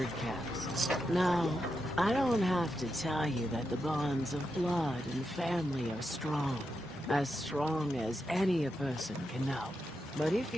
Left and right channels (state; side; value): normal; both; correlation 0.86